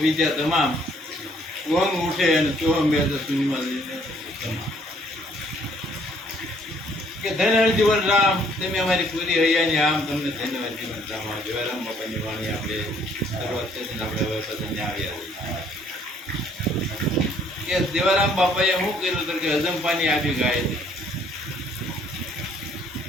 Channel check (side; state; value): both; normal; correlation 0.63